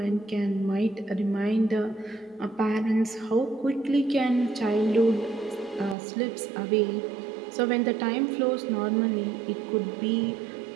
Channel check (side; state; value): left; drops out; at 6.0 s